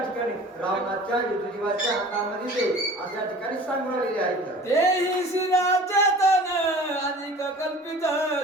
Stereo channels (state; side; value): normal; both; correlation 0.43